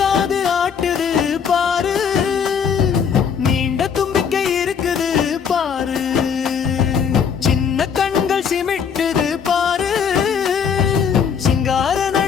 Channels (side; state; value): right; quieter; 7.0 dB